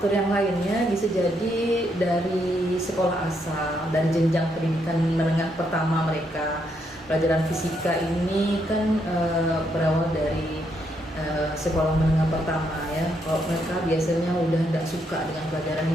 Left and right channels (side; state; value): both; normal; correlation 0.76